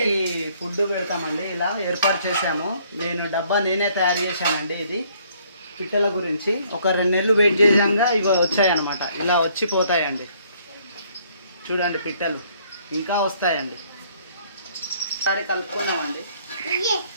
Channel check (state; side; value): inverted; both; correlation -0.64